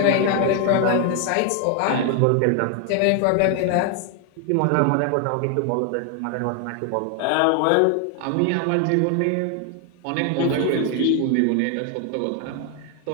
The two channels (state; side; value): different; both; correlation 0.00